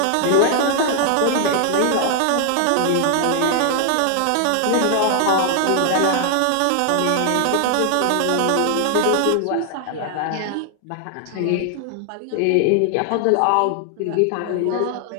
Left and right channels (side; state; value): both; different; correlation 0.00